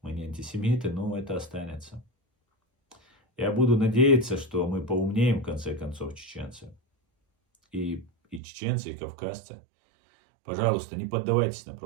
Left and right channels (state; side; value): drops out; left; at 8.4 s